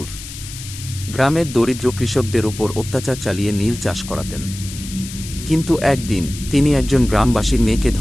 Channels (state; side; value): noise; left; hiss, 12 dB below the sound